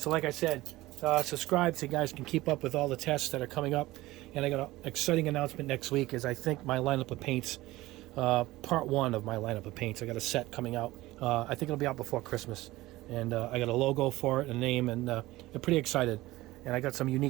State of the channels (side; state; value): left; quieter; 18.3 dB